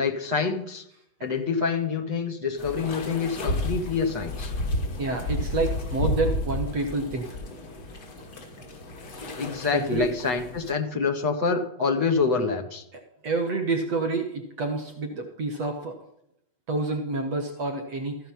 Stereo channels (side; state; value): left; late; 8.1 ms